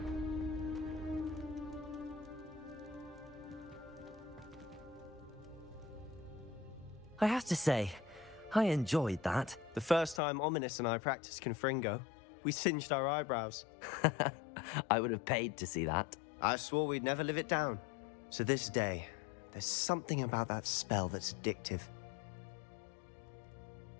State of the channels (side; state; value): right; drops out; at 10.2 s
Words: I have to say, I enjoyed that. The first time Ominous and I practiced Confringo, we singed our eyebrows. I would have paid to see that. I swore we'd never live it down. To this day, there's something about that spell that's addictive.